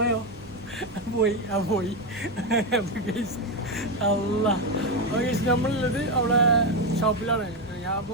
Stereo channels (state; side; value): normal; both; correlation 0.09